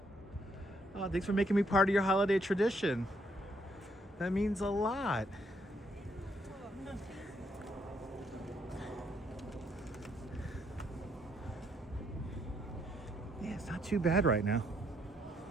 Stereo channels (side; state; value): both; normal; correlation 0.72